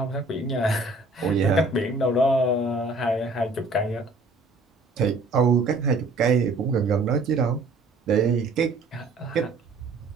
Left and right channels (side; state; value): left; quieter; 3.1 dB